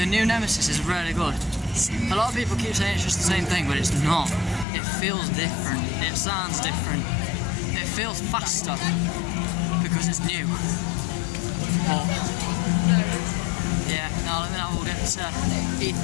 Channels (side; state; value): right; drops out; at 4.7 s